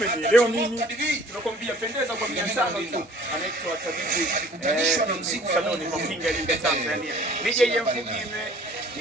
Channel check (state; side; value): normal; both; correlation 0.52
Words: mimi? Tunakwambia pendeza kwa 500 tu. Anaitwa Tabibu Sadoni Mafinga Iringa Tanzania. DJ